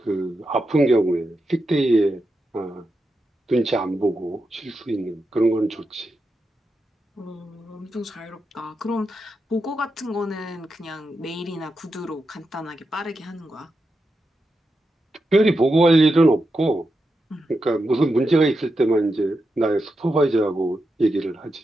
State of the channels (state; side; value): normal; both; correlation 0.87